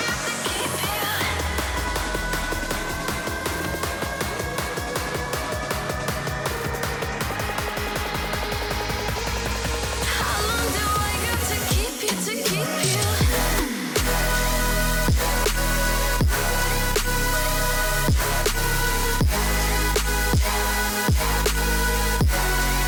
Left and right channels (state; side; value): identical; both; correlation 1.00